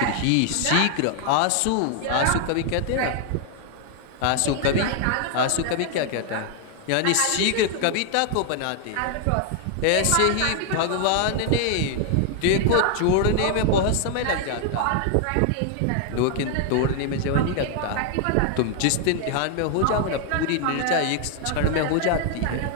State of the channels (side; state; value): both; different; correlation 0.00